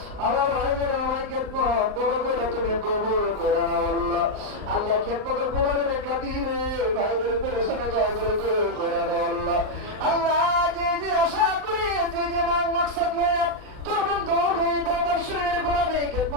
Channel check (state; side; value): late; left; 39 ms